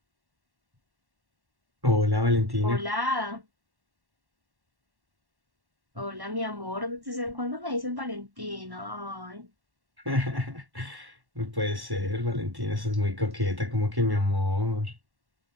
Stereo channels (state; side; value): late; left; 1.1 ms